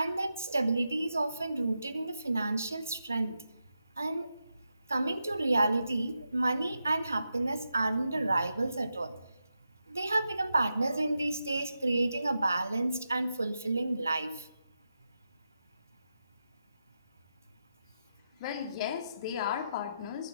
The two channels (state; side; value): inverted; both; correlation -0.87